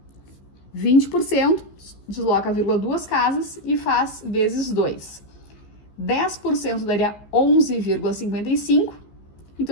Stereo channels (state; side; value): late; right; 15 ms